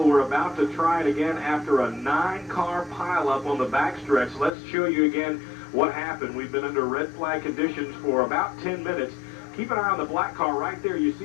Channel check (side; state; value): right; drops out; at 4.5 s